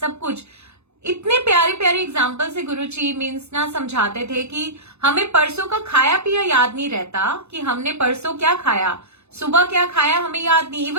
कुछ। इतने प्यारे प्यारे एग्जाम्पल से गुरुजी मीन्स ना समझाते थे कि हमें परसों का खाया पिया याद नहीं रहता, कि हमने परसों क्या खाया, सुबह क्या खाया हमें याद नहीं,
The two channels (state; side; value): late; left; 0.81 ms